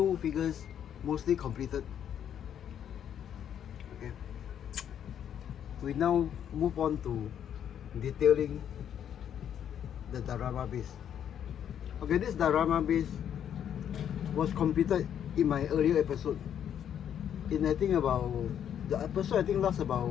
figures mostly completed. Okay. We now move on to detailing the diorama base. Okay, this diorama base was completed in my earlier episode. In I think about the episode lasts about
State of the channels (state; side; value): quieter; right; 9.3 dB